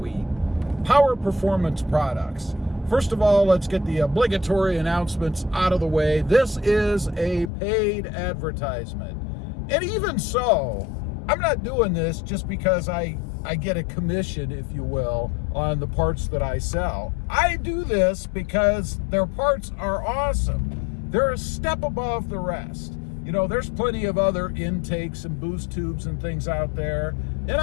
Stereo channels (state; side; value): drops out; right; at 7.5 s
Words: power performance products. First of all, let's get the obligatory announcements out of the way. This is a paid advertisement. And even so, I'm not doing this just because I get a commission, if you will, on the parts that I sell. I do this because their parts are awesome. They're a step above the rest. You know, there's plenty of other intakes and boost tubes and things out there, and